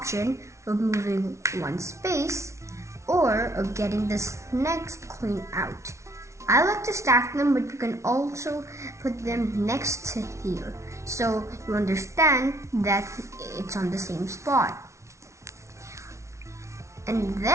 of moving one space or of getting this next coin out. I like to stack them, but you can also put them next to here, so you understand that it's on the same spot. And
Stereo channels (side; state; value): left; late; 0.14 ms